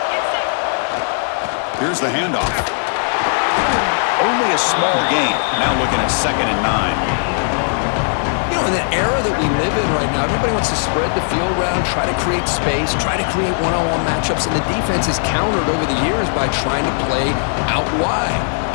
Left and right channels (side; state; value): right; silent; 66 dB below the other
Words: Here's the handoff. a small gain. Now looking at 2nd and 9. You know, in the era that we live in right now, everybody wants to spread the field around, try to create space, try to create one-on-one matchups, and the defense is countered over the years by trying to play out wide.